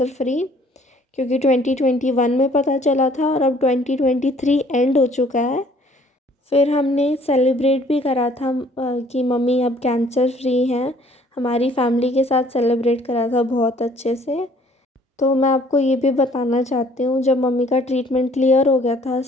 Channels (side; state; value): both; normal; correlation 0.58